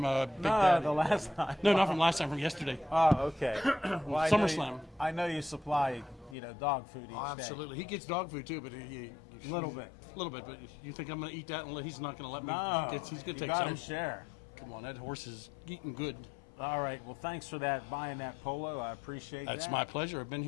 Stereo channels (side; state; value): right; drops out; at 6.4 s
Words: a Big No, Daddy. the last time. No, not from last time. From yesterday. Oh, okay. Well, I know SummerSlam. I know you supply, dog food each day. He gets dog food too, but he A little bit. A little bit, but you think I'm going to eat that? And he's not going to let me. No, He's going you to take gotta some. share. Come on, that horse is eating good. All right. Well, thanks for that, buying that polo. I appreciate that. That's my pleasure. I've been